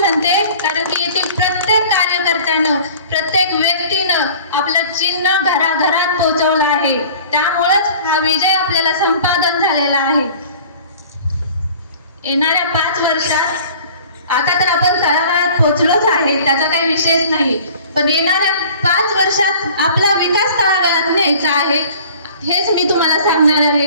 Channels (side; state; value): both; inverted; correlation -0.47